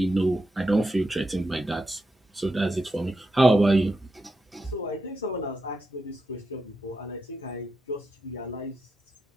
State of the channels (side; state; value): both; normal; correlation 0.86